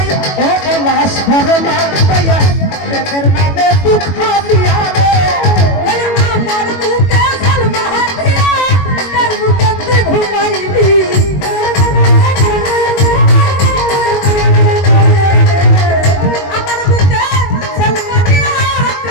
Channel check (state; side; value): late; right; 21 ms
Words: ও বলা সরলা পাইয়া প্রেমের নামে দুঃখ দিয়া রে আমার বুকে সালমা হাতিয়া তার বুকে তুই ঘুমাইলি আমার বুকে সালমা দিয়া